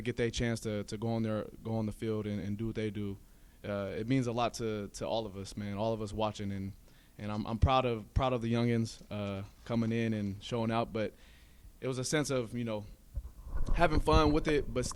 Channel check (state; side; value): identical; both; correlation 1.00